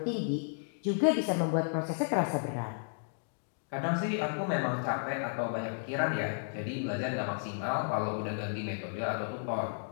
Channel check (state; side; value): silent; right; digital silence